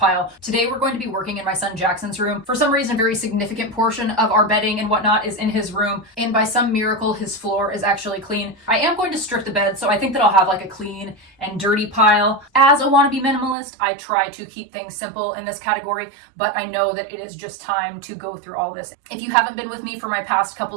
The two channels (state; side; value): drops out; left; at 13.6 s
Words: Today we're going to be working in my son Jackson's room. For some reason, a very significant portion of our bedding and whatnot is in his room, and by some miracle, his floor is actually clean. I am going to strip the bed, so I think that I'll have like a clean and dirty pile. As a wannabe minimalist, I try to keep things simple in this category, but I know that it is just time to go through all this. If you haven't been with me for my past